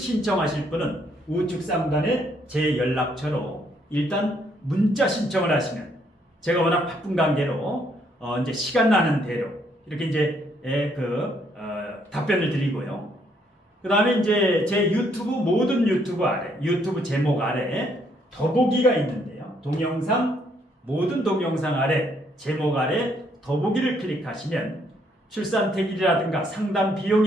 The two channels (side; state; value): both; normal; correlation 0.70